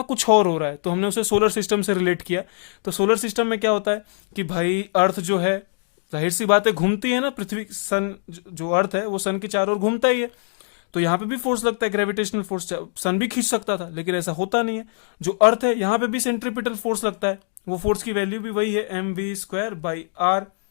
कुछ और हो रहा है। तो हमने उसे सोलर सिस्टम से रिलेट किया। तो सोलर सिस्टम में क्या होता है कि भाई अर्थ जो है, जाहिर सी बात है, घूमती है ना, पृथ्वी, सन, जो अर्थ है वो सन के चारों ओर घूमता ही है। तो यहां पे भी फोर्स लगता है, ग्रेविटेशनल फोर्स, सन भी खींच सकता था, लेकिन ऐसा होता नहीं है। जो अर्थ है यहां पे भी सेंट्रीपिटल फोर्स लगता है, वो फोर्स की वैल्यू भी वही है, mv²/r।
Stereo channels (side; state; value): right; silent; digital silence